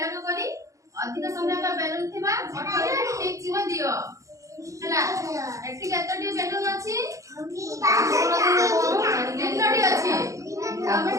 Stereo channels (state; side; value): late; left; 0.15 ms